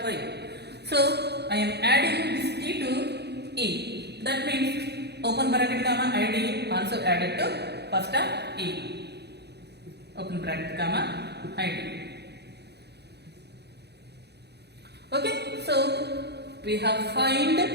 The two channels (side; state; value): left; late; 0.48 ms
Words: Y. So I am adding this T to E. That means open bracket comma ID also added to first of E. Open bracket comma ID. Okay, so we have find